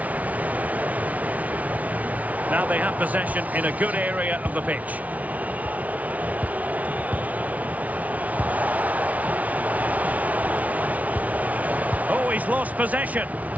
Now they have possession in a good area of the pitch. Oh, he's lost possession.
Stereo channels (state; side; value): late; left; 0.070 ms